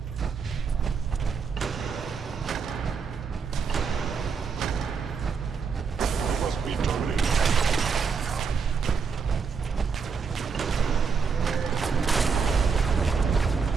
Must be terminated.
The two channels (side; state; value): left; quieter; 5.7 dB